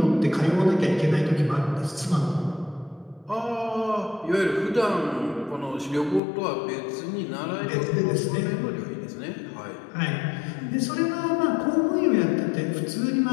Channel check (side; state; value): right; drops out; at 6.2 s